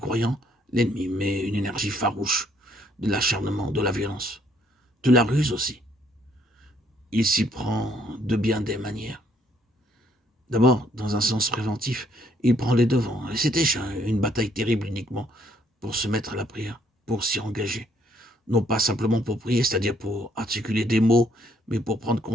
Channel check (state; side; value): normal; both; correlation 0.67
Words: l'ennemi met une énergie farouche, de l'acharnement, de la violence, de la ruse aussi. Il s'y prend de bien des manières. D'abord, dans un sens préventif, il prend les devants. Et c'est déjà une bataille terrible uniquement pour se mettre à la prière, pour s'y engager. Non pas simplement pour prier, c'est-à-dire pour articuler des mots, mais pour prendre